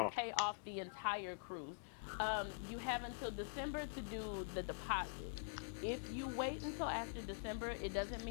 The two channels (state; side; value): silent; right; digital silence